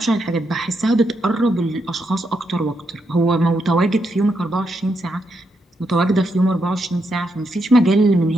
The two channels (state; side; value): normal; both; correlation 0.81